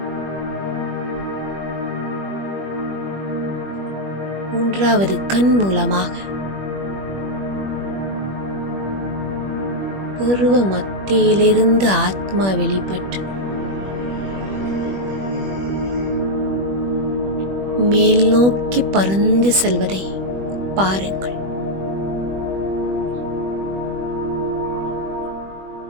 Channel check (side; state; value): left; late; 21 ms